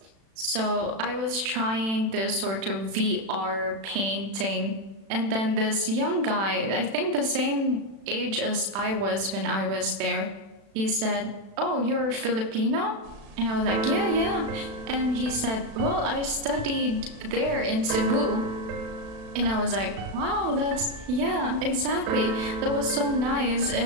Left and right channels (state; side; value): late; left; 36 ms